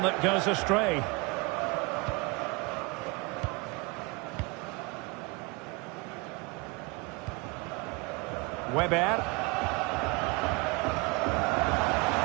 that goes astray. Weber.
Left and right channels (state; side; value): quieter; left; 26.9 dB